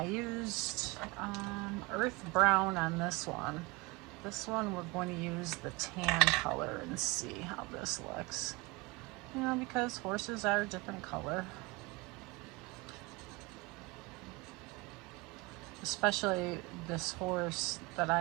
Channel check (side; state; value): left; quieter; 24.6 dB